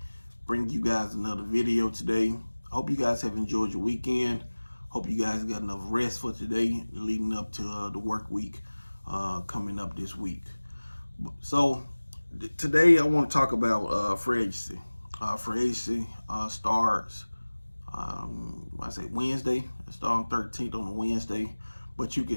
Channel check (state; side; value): inverted; both; correlation -1.00